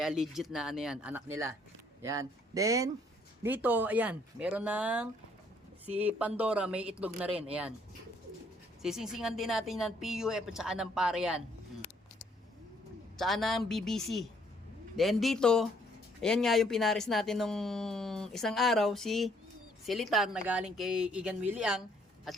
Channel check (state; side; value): normal; both; correlation 0.66